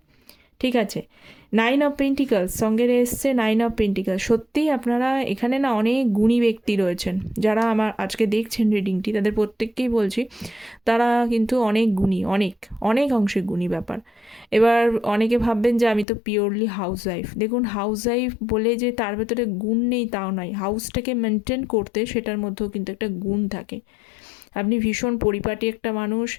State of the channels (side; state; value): right; drops out; at 16.1 s